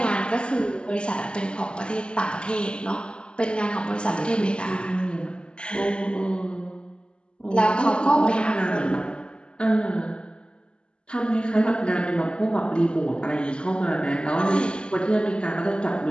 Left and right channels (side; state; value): right; late; 0.051 ms